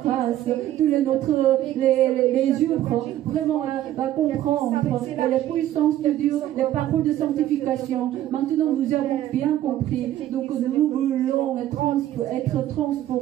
grâce. Tous les yeux, vraiment, à comprendre la puissance de Dieu, les paroles de sanctification. Maintenant, nous avons bien compris. Donc, nous voulons être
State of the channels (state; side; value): quieter; left; 13.0 dB